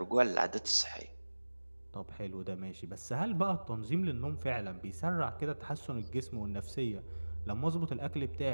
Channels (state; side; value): inverted; both; correlation -1.00